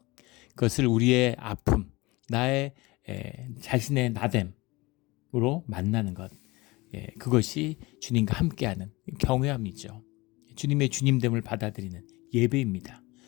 그것을 우리의 아픔, 나의 자신의 나됨으로 만나는 것, 그것이 주님과 함께하는 경외함이죠. 주님의 주님됨을 받아들이는 예배입니다.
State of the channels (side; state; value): right; quieter; 22.4 dB